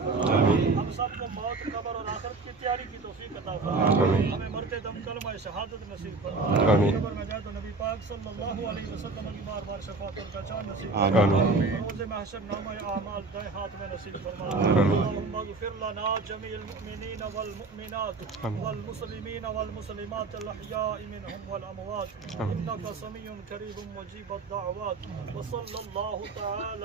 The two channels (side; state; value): left; quieter; 3.8 dB